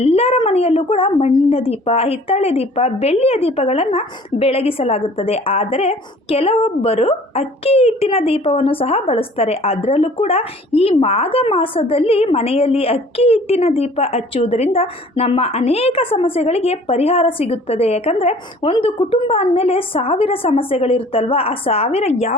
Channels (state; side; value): normal; both; correlation 0.51